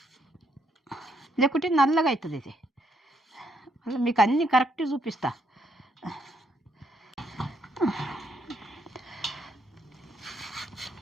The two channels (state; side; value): normal; both; correlation 0.73